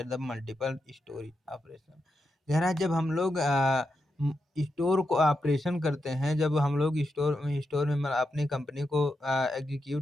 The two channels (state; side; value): normal; both; correlation 0.86